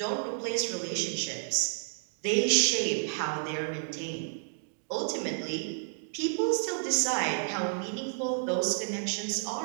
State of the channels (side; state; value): left; silent; digital silence